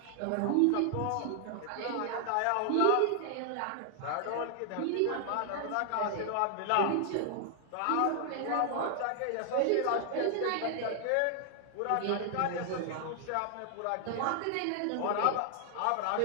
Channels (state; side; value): different; both; correlation 0.00